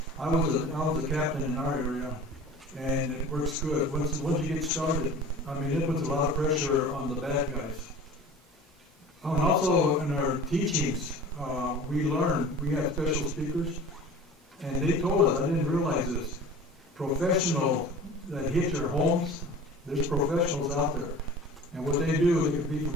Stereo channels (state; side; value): normal; both; correlation 0.40